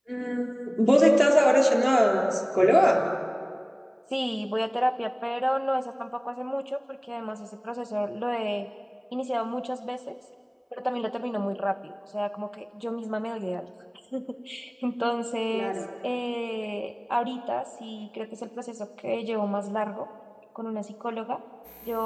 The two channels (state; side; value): identical; both; correlation 1.00